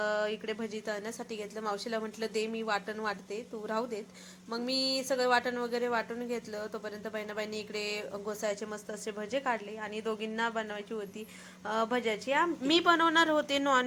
इकडे भजी तळण्यासाठी घेतलं. मावशीला म्हटलं दे मी वाटण वाटते, तू राहू देत. मग मी सगळं वाटण वगैरे वाटून घेतलं. तोपर्यंत बहिणाबाईंनी इकडे घोसाळ्याचे मस्त असे भजे काढले आणि दोघींना बनवायची होती भज्याची मी बनवणार होते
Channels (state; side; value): identical; both; correlation 1.00